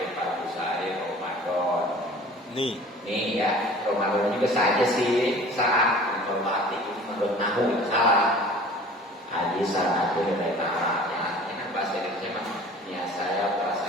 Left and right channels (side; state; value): both; normal; correlation 0.45